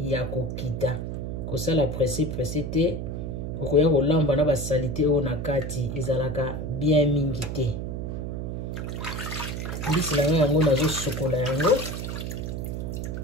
kokita. Kosala presse te. Okoya kolamba na basalite oyo na kati ezalaka bien mingi te. Mbisi na ngai yango nazo sokola yango.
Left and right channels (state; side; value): noise; right; hum, 4 dB below the sound